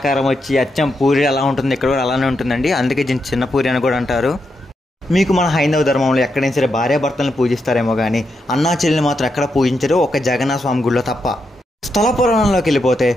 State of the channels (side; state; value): both; normal; correlation 0.83